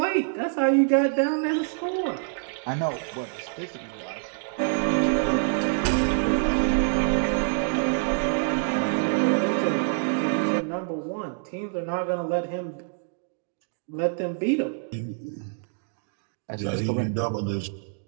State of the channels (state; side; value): silent; left; digital silence